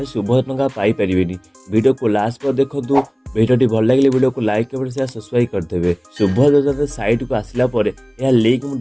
शुभोदय टंका पाइपर वीडियो को लास्ट पर देखूँ। वीडियो भल लगे वीडियो को लाइक कमेंट शेयर सब्सक्राइब करदेवे। शुभोदय योजना साइट को आसला यह लिंक मुझे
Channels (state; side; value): identical; both; correlation 1.00